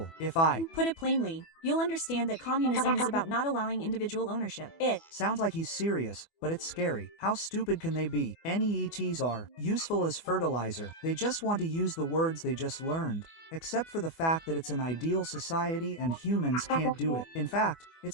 If I Put it plainly, you'll understand that communism is about not allowing individual ownership. It sounds like he's serious, but it's scary. How stupid can they be? NEETs are useful as fertilizer. They just want to use the words they just learned. Except for the fact that it's an ideal society and humans can't do it. In fact,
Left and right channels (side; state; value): right; late; 24 ms